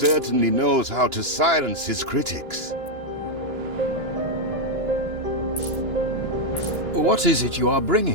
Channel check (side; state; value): left; late; 2.9 ms